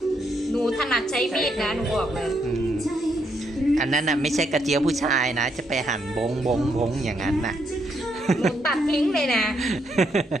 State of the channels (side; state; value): both; normal; correlation 0.76